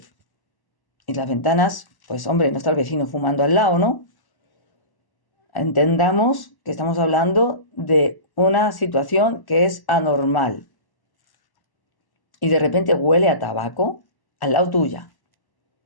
y las ventanas, pues hombre, no está el vecino fumando al lado, ¿no? Entendamos que estamos hablando de una situación que es anormal. Y de repente huele a tabaco al lado tuya.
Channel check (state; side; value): late; right; 1.1 ms